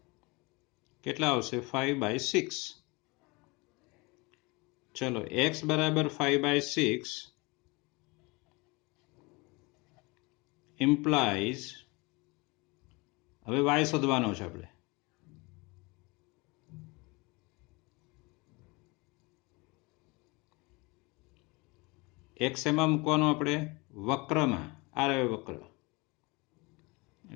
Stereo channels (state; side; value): quieter; right; 26.2 dB